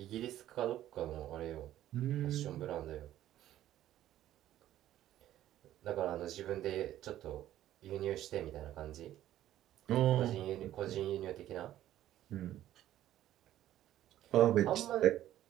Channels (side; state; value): left; quieter; 13.0 dB